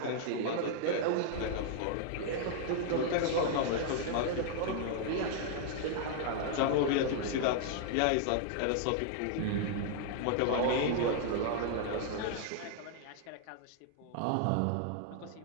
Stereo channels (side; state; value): both; different; correlation -0.01